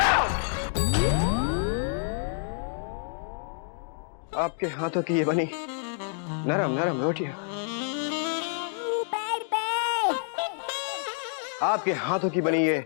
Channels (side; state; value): right; silent; 59 dB below the other